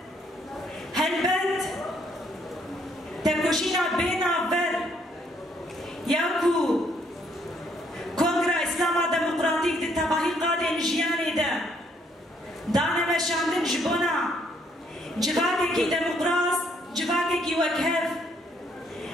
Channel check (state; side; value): normal; both; correlation 0.69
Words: هلبت تکوشینا بینا ور یاکو کنگره اسلاما دموکراتیک دی تباهی قادن جیانی ده دانه مشاندن جبونا جواکی کی دموکراس جواکی کی وکهف